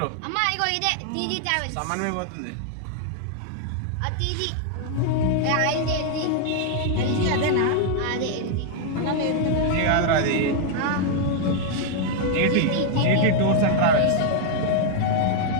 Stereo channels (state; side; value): different; both; correlation 0.00